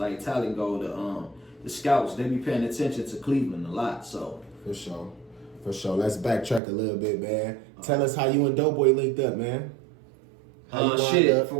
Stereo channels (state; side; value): drops out; left; at 6.6 s